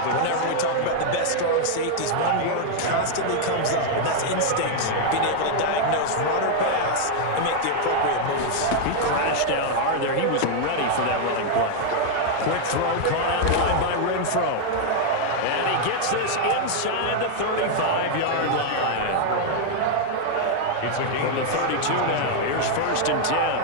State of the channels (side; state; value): both; different; correlation 0.00